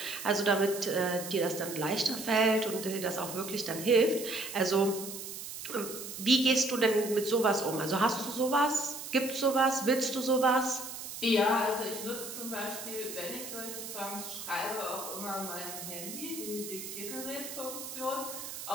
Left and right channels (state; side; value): noise; right; hiss, 9 dB below the sound